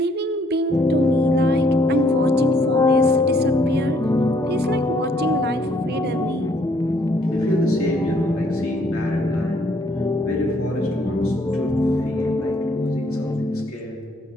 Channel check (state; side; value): normal; both; correlation 0.66